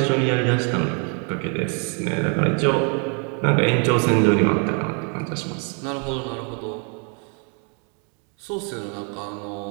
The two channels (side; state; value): left; quieter; 38.9 dB